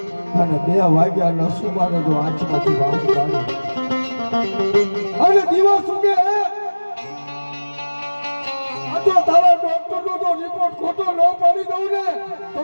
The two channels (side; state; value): both; inverted; correlation -1.00